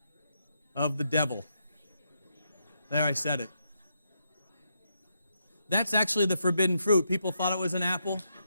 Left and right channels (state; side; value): inverted; both; correlation -0.80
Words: of the devil. There, I said it. That's actually the forbidden fruit. People thought it was an apple.